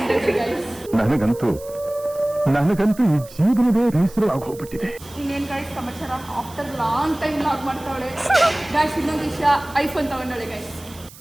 ಗೈಸ್. ನನಗಂತೂ ಈ ಜೀವನವೇ ಬೇಸರವಾಗಿ ಹೋಗ್ಬಿಟ್ಟಿದೆ. ಇನ್ನೇನು ಗೈಸ್ ಸಮಾಚಾರ? ಆಫ್ಟರ್ ಲಾಂಗ್ ಟೈಮ್ ಲಾಗ್ ಮಾಡ್ತಾವಳೆ ಗೈಸ್. ಇನ್ನೊಂದು ವಿಷಯ, ಐಫೋನ್ ತಗೊಂಡವಳೆ ಗೈಸ್.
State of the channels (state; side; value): noise; right; hiss, 20 dB below the sound